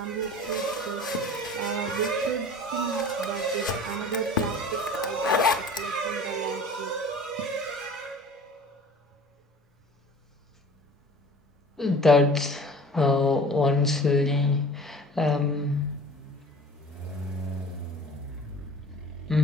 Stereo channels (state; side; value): normal; both; correlation 0.43